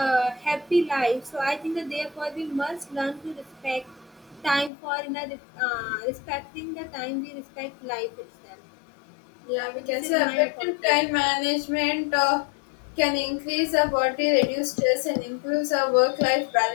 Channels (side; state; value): right; drops out; at 4.7 s